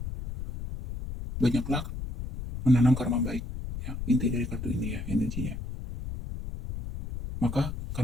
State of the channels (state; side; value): noise; left; rumble, 7 dB below the sound